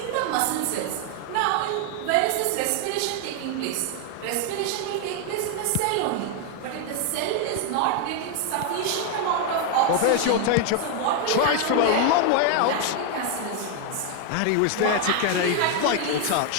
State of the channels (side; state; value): both; different; correlation 0.01